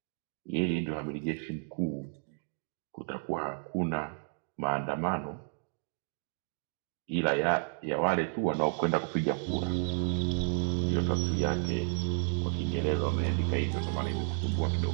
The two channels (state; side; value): silent; left; digital silence